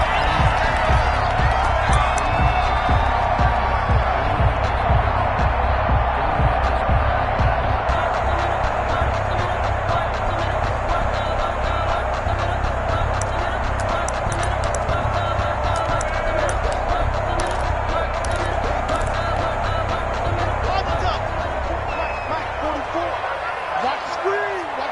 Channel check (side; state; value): both; identical; correlation 1.00